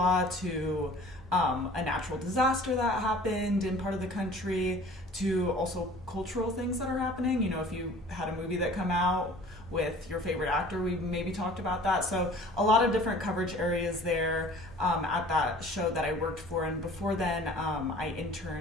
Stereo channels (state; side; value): normal; both; correlation 0.47